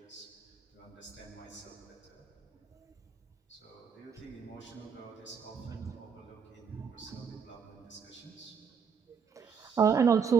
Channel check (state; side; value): quieter; left; 6.4 dB